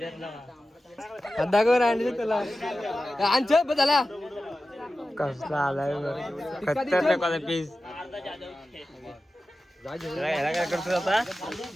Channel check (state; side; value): normal; both; correlation 0.94